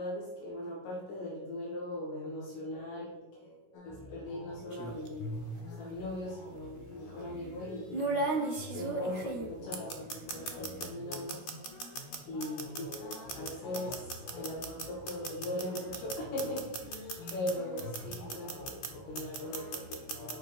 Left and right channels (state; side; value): late; right; 16 ms